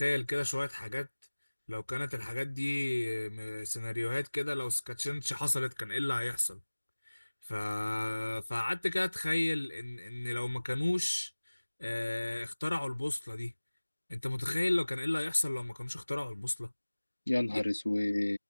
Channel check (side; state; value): both; inverted; correlation -1.00